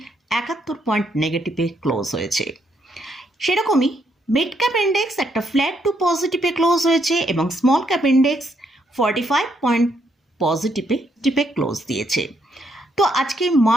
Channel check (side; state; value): both; normal; correlation 0.74